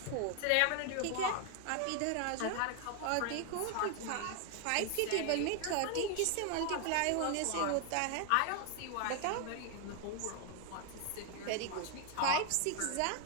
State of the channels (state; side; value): different; both; correlation 0.00